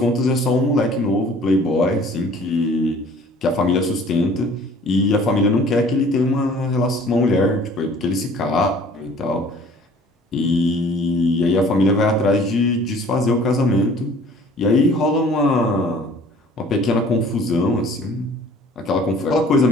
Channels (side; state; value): both; normal; correlation 0.51